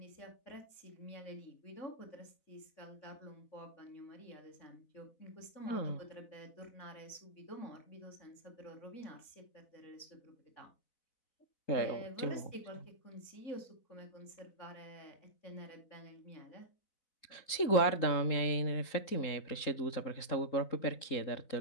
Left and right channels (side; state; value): right; late; 3.8 ms